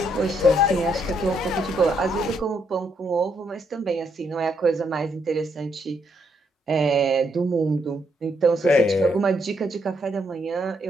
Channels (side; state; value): both; normal; correlation 0.75